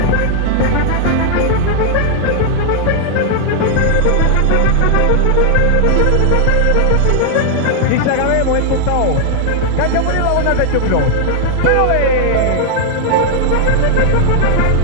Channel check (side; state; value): both; different; correlation -0.01